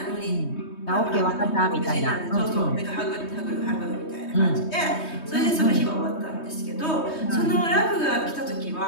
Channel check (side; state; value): right; late; 3.2 ms